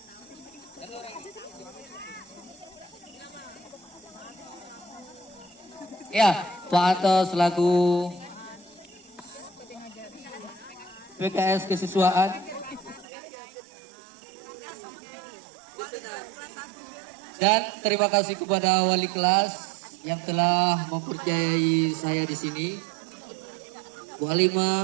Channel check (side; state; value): left; drops out; at 13.1 s